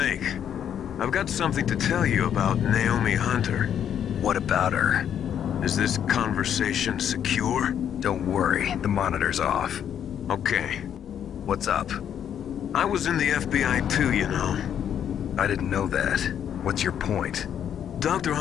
I've got something to tell you about Naomi Hunter. What about her? Is this conversation secure? Don't worry, the monitor's off. Okay. What's up? I was in the FBI too, you know. I didn't know that. What's your point? Dr.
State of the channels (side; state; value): right; quieter; 9.2 dB